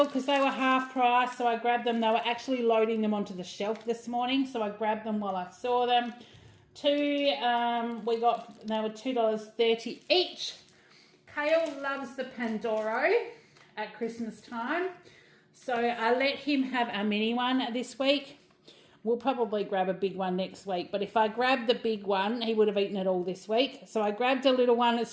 because they were half price, so I grabbed them. They were actually loading them onto the shelf this morning, so I grabbed them while I saw them. They were $2.30 each. Kale loves the Pandoro at Christmas time, so I let him have a mini one this week. We'll probably grab a big one next week, but if I grabbed the big one, he would have eaten it all this week. So I grabbed a little one.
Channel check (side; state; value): both; identical; correlation 1.00